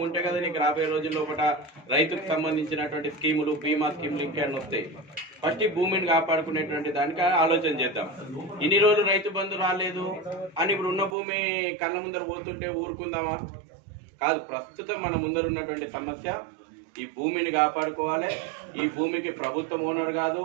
ఉంటే కదా నీకు రాబోయే రోజుల్లో ఒకట రైతుకు సంబంధించినటువంటి స్కీములు, బీమా స్కీములు ఇంకేమైనా వస్తాయి. ఫస్ట్ ఈ భూమిని కాపాడుకునేటువంటి దానికి ఆలోచన చేద్దాం. ఇన్ని రోజులు రైతు బంధు రాలేదు అని ఇప్పుడు ఉన్న భూమి కళ్ళ ముందర పోతుంటే ఊరుకుందామా? కాదు. ప్రస్తుతం మన ముందర ఉన్నటువంటి సమస్య ఈ భూమిని కాపాడుకోవాలి. ఈ భూమికి ప్రభుత్వం ఓనర్ కాదు,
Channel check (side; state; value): left; drops out; at 11.2 s